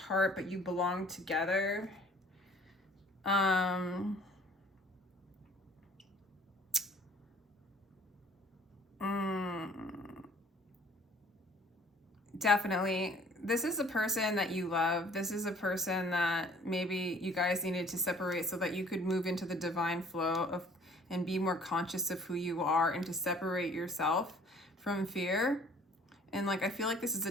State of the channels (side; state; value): both; normal; correlation 0.54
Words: but you belong together. Definitely. This is a person that you love. This is a person that maybe you guys needed to separate so that you could move into the divine flow of and be more conscious of who you are, and to separate yourself from fear. And like, I feel like this is